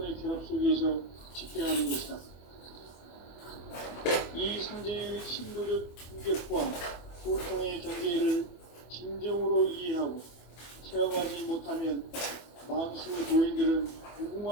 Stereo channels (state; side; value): late; right; 24 ms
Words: 결합 속에서 집행하는 것이다. 이 상제의 신도적 인격과 소통의 경계를 진정으로 이해하고 체험하지 못하면 만수 도인들은